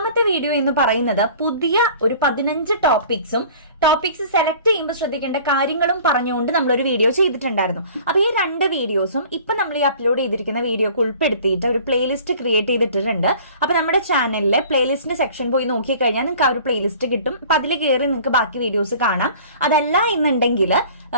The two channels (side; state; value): both; inverted; correlation -0.47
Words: വീഡിയോ എന്ന് പറയുന്നത് പുതിയ ഒരു 15 ടോപ്പിക്സ് സെലക്ട് ചെയ്യുമ്പോൾ ശ്രദ്ധിക്കേണ്ട കാര്യങ്ങളും പറഞ്ഞുകൊണ്ട് നമ്മളൊരു വീഡിയോ ചെയ്തിട്ടുണ്ടായിരുന്നു. അപ്പൊ ഈ 2 വീഡിയോസും ഇപ്പൊ നമ്മൾ ഈ അപ്ലോഡ് ചെയ്തിരിക്കുന്ന വീഡിയോക്ക് ഉൾപ്പെടുത്തിയിട്ട് ഒരു പ്ലേലിസ്റ്റ് ക്രിയേറ്റ് ചെയ്തിട്ടുണ്ട്. അപ്പൊ നമ്മുടെ ചാനലിലെ പ്ലേലിസ്റ്റിന്റെ സെക്ഷൻ പോയി നോക്കിക്കഴിഞ്ഞാൽ നിങ്ങൾക്ക് ആ ഒരു പ്ലേലിസ്റ്റ് കിട്ടും. അപ്പൊ അതിൽ കയറി നിങ്ങൾക്ക് ബാക്കി വീഡിയോസ് കാണാം. അതല്ല എന്നുണ്ടെങ്കിൽ